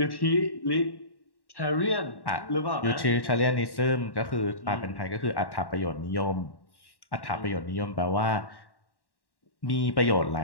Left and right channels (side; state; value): right; late; 1.1 ms